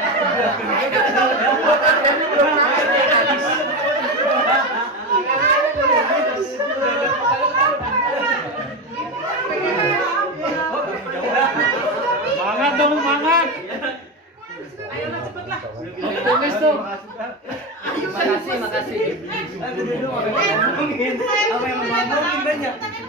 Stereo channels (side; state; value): both; normal; correlation 0.18